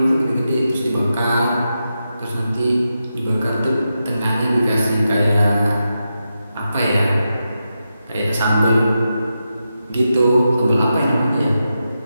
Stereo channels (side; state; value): both; inverted; correlation -0.88